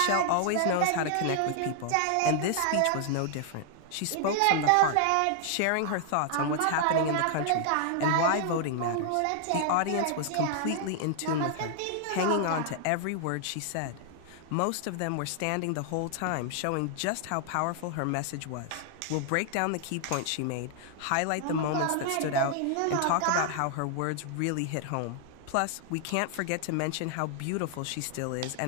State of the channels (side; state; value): both; different; correlation 0.00